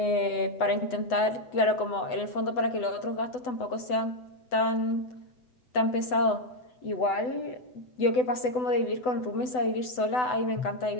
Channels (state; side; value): late; right; 8.0 ms